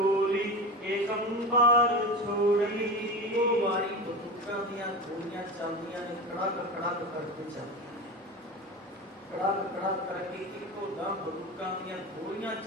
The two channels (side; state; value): both; normal; correlation 0.25